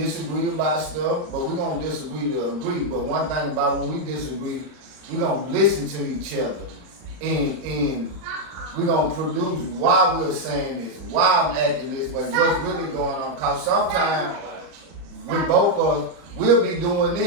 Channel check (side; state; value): left; late; 39 ms